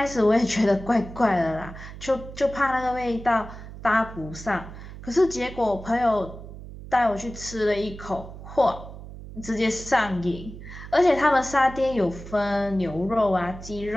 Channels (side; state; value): right; noise; hum, 13 dB below the sound